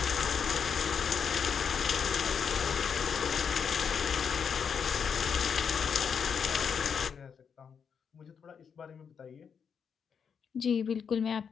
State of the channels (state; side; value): quieter; right; 6.8 dB